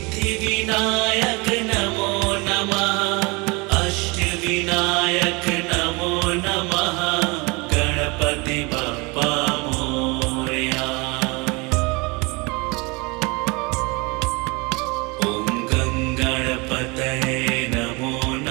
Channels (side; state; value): left; quieter; 27.2 dB